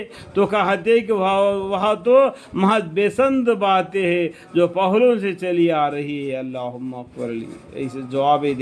تو کہتے کہ وہاں تو محض بےسند باتیں ہیں جو پہلوں سے چلی آ رہی ہے، اللہم اغفر لی، ایسے جوابیں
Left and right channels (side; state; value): both; identical; correlation 1.00